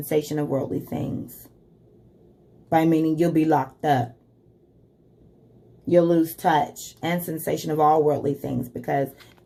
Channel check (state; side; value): identical; both; correlation 1.00